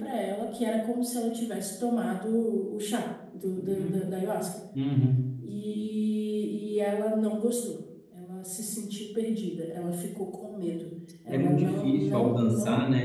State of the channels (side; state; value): both; identical; correlation 1.00